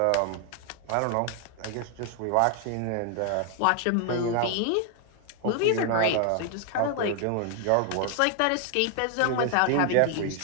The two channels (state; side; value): different; both; correlation 0.00